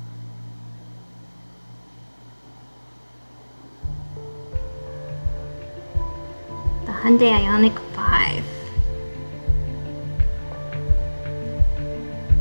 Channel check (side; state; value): both; inverted; correlation -1.00